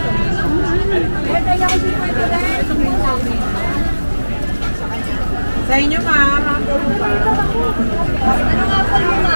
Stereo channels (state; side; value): inverted; both; correlation -1.00